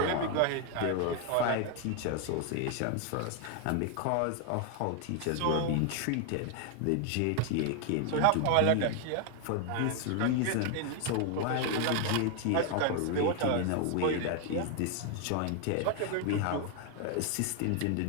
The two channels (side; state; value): both; different; correlation 0.00